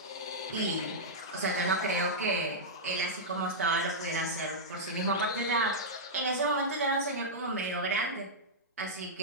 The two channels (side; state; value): both; normal; correlation -0.09